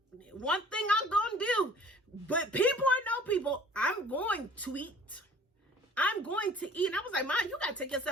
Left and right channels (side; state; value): both; normal; correlation 0.50